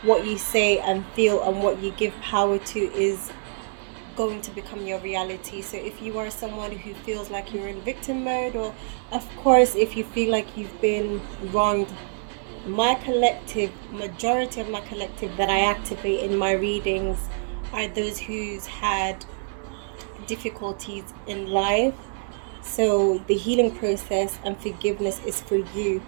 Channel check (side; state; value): left; silent; digital silence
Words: what you say and feel, and what you give power to is going to become your reality. So if you are someone who feels like you're in victim mode, or of course if you feel like you've been wronged, my collective, majority of my collective that I activate in my readings are those who's had difficulties in life. So the healing process and forgiveness is for you,